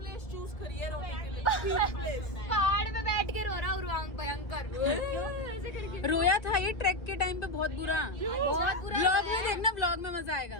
चूज करी है रोने के लिए, पीक प्लेस। पहाड़ पे बैठ के रो रहा उर्वांग भयंकर ऐसे करके रोया था ये ट्रैक के टाइम पे बहुत बुरा। व्लॉग में देखना, व्लॉग में मजा आएगा।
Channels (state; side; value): late; right; 1.7 ms